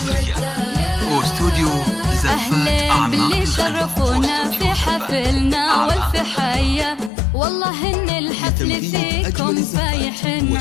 استوديو زفات أهلا باللي شرفونا في حفلنا والف حيا والله ان الحفل فيكم فايح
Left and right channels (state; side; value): drops out; right; at 7.1 s